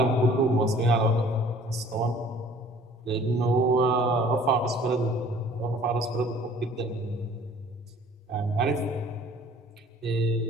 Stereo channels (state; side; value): normal; both; correlation 0.52